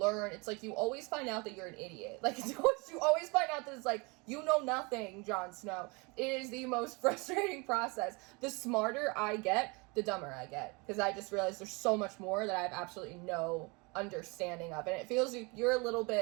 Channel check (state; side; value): quieter; left; 28.6 dB